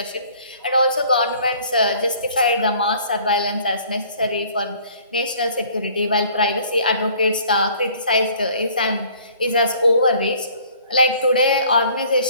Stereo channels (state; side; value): inverted; both; correlation -0.55